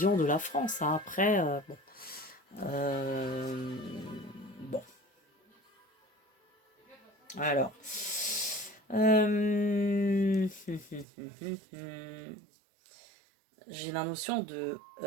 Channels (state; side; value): drops out; left; at 11.1 s